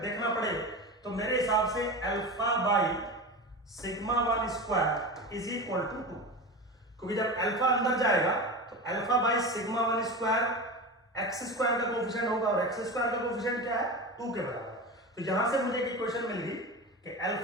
देखना पड़े तो मेरे हिसाब से alpha by sigma 1 square is equal to 2, क्योंकि जब अल्फा अंदर जाएगा तो alpha by sigma 1 square x square का कोफिशिएंट होगा, और एक्स स्क्वायर का कोफिशिएंट क्या है 2 के बराबर। तो यहां से मुझे एक इक्वेशन मिल गई कि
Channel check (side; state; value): both; normal; correlation 0.26